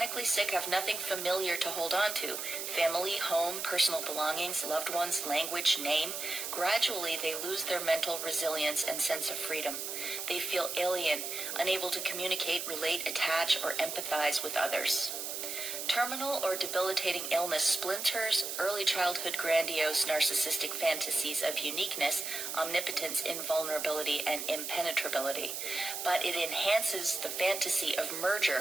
sick have nothing familiar to hold on to. Family, home, personal belongings, loved ones, language, name. Gradually, they lose their mental resilience and sense of freedom. They feel alien, unable to communicate, relate, attach, or empathize with others. Terminal or debilitating illness splinters early childhood grandiose narcissistic fantasies of uniqueness, omnipotence, invulnerability, and impenetrability. But it enhances the fantasy of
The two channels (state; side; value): noise; right; hiss, 5 dB below the sound